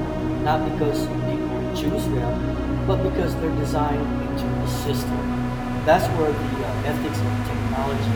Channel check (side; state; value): both; identical; correlation 1.00